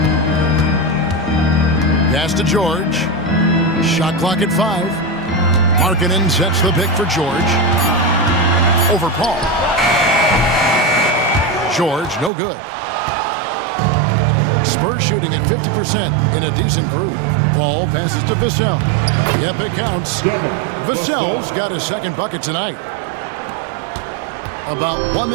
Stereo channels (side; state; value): left; drops out; at 12.3 s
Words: Pass to George. Shot clock at 5. Markkanen sets the pick for George. Over Paul. George, no good. Spurs shooting at 50% in a decent groove. Paul passes to Vassell. Yep, it counts. Vassell's got his second bucket tonight. About 1